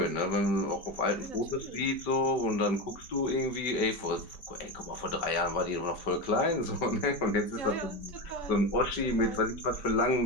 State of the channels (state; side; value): late; right; 5.1 ms